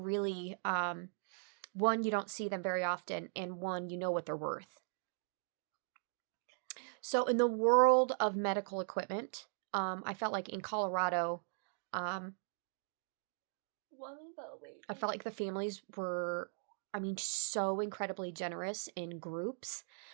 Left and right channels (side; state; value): left; silent; digital silence